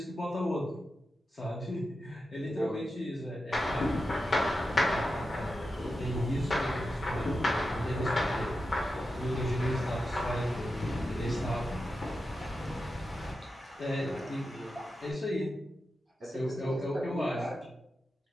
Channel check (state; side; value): normal; both; correlation 0.90